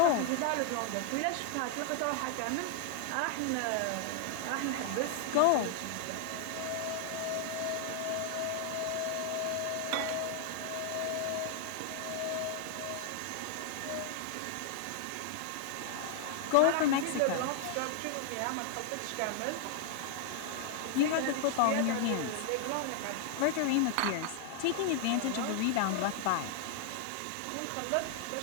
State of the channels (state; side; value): different; both; correlation 0.00